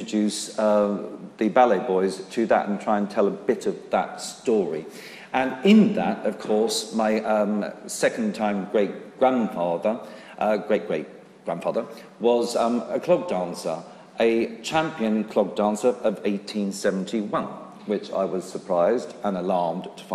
the BalletBoyz to that and try and tell a bit of that story. And in that, of course, my second-time great-grandfather, great-great-grandfather, was a clog dancer, a champion clog dancer of 1871, which I was surprised and alarmed to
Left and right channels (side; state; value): both; identical; correlation 1.00